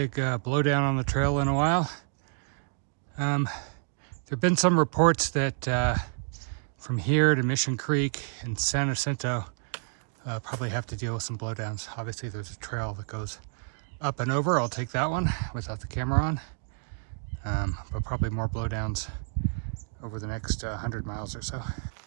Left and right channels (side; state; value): left; silent; 58 dB below the other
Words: blowdown on the trail in a while. There have been some reports that from here to Mission Creek and San Jacinto probably have to deal with some blowdowns. Obviously there's a trail that goes up and over. I'll take that one without the camera on. But probably more blowdowns over the next 100 miles or so.